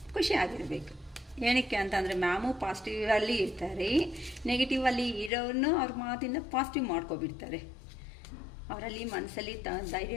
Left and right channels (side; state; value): right; drops out; at 5.3 s